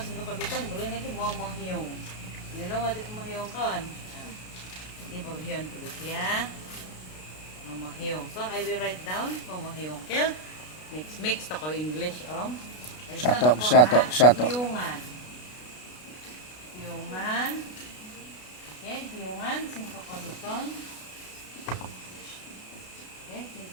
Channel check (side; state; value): right; late; 33 ms